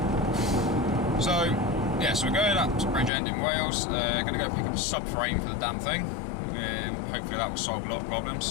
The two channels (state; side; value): drops out; right; at 3.1 s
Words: So yeah, so we're going up to Bridgend in Wales. Going to go pick up a subframe for the damn thing. Hopefully that will solve a lot of